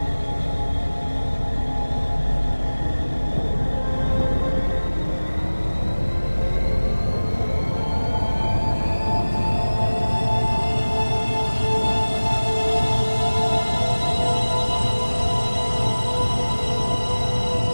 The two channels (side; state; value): both; inverted; correlation -1.00